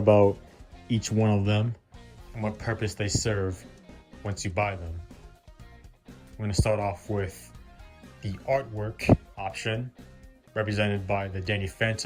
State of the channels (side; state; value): both; identical; correlation 1.00